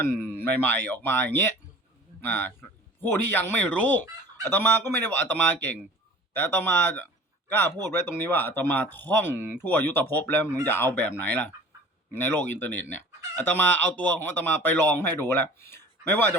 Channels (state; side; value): normal; both; correlation 0.44